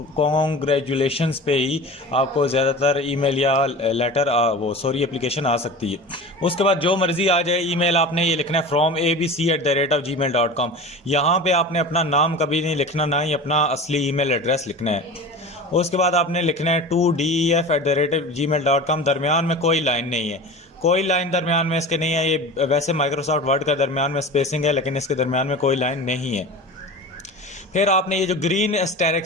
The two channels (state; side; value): normal; both; correlation 0.34